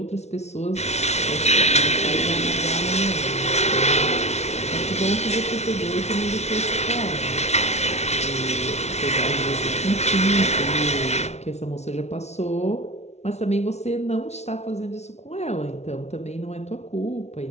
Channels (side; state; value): right; late; 0.32 ms